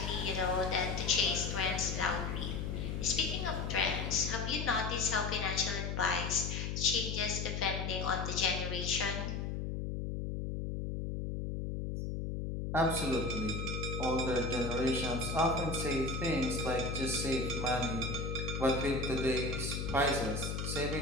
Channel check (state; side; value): noise; left; hum, 3 dB below the sound